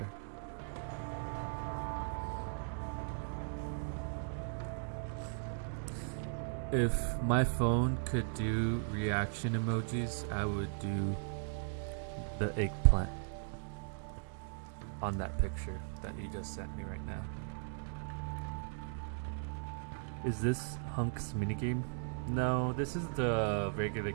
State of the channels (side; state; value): left; silent; digital silence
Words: If my phone could do reaction emojis, I would do the eggplant on that picture that you just sent me right now. Is this Hunk's minigame? No, this is the regular